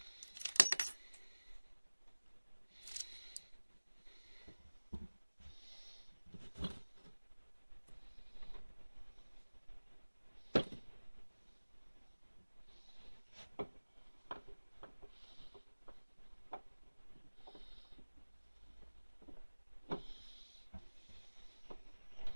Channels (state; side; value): inverted; both; correlation -1.00